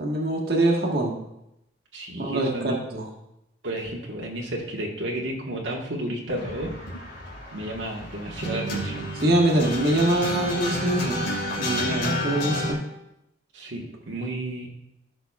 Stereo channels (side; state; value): both; normal; correlation 0.47